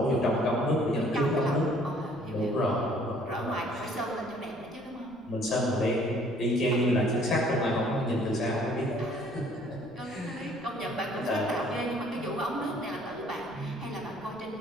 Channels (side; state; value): left; noise; rumble, 29 dB below the sound